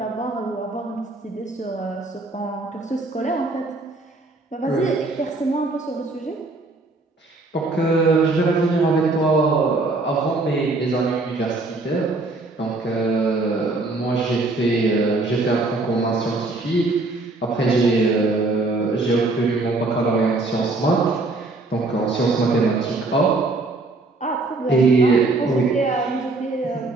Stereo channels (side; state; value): left; quieter; 3.2 dB